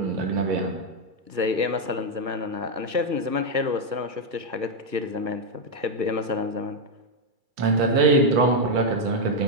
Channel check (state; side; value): late; left; 2.3 ms